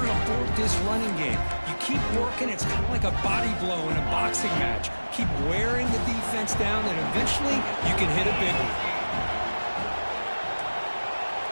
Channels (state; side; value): inverted; both; correlation -1.00